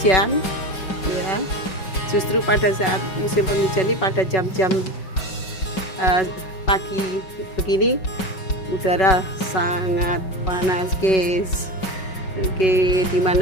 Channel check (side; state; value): right; late; 5.3 ms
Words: ya. Justru pada saat musim penghujan ini, pada jam-jam pagi begini, udara sangat panas guys. Oke,